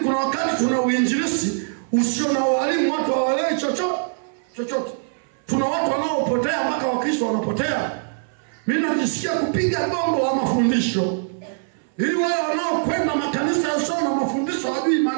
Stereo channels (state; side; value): silent; left; 61 dB below the other